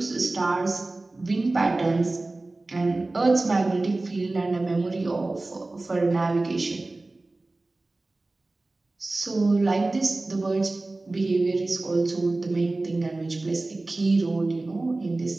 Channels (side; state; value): left; quieter; 3.0 dB